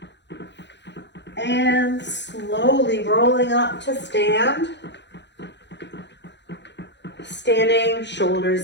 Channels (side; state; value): right; late; 0.51 ms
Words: And slowly rolling up to stand. Standing, shoulders